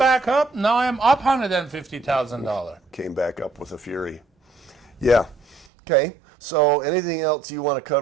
up. Now I'm up $150,000. Came back up with a fury. Yeah. Okay. So anything else you want to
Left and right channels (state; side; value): drops out; left; at 5.7 s